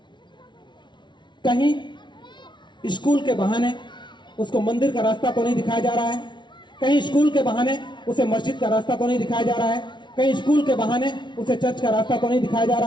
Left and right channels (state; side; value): late; right; 0.23 ms